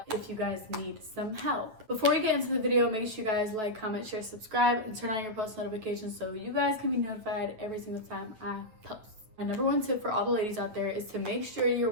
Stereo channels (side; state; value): left; late; 9.3 ms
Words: if you guys need some help. Before we get into the video, make sure you guys like, comment, share, subscribe, and turn on your post notifications so you guys can be notified every single time I post. My number one tip for all the ladies out there is to make sure you're